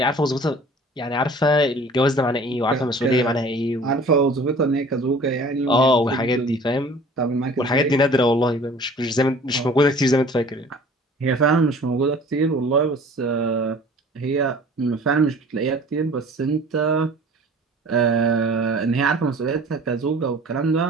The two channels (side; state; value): both; normal; correlation 0.47